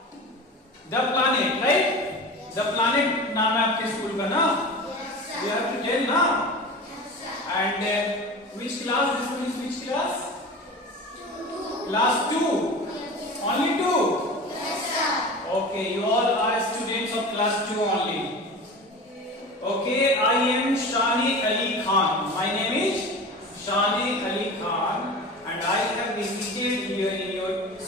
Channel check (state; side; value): normal; both; correlation 0.33